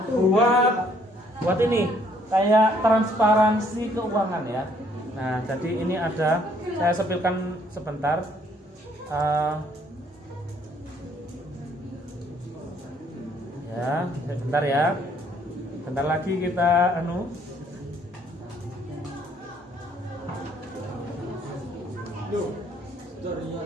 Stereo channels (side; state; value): both; normal; correlation 0.64